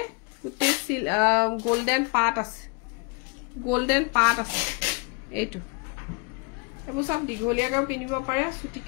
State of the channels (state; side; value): quieter; right; 33.0 dB